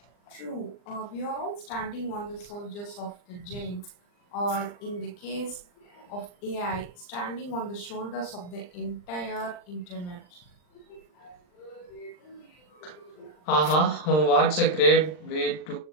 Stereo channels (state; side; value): late; right; 39 ms